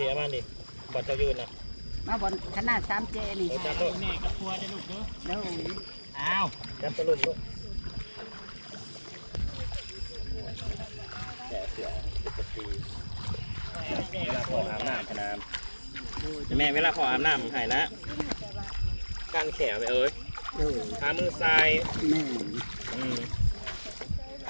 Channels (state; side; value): inverted; both; correlation -1.00